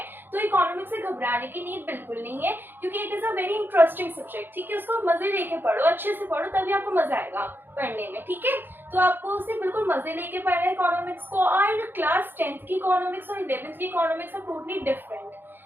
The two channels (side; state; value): left; late; 0.098 ms